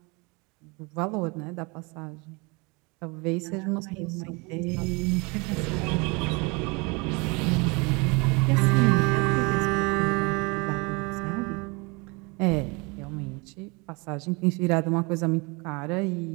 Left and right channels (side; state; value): left; quieter; 28.4 dB